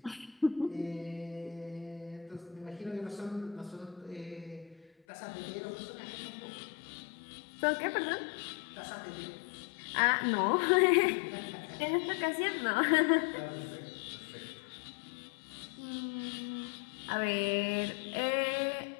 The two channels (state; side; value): drops out; right; at 4.9 s